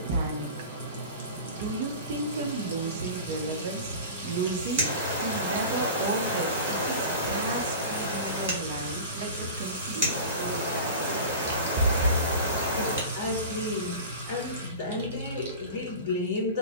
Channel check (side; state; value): both; inverted; correlation -0.33